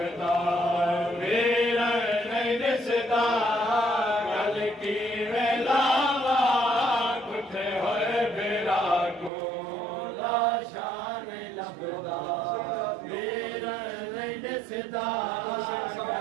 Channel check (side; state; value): left; drops out; at 9.3 s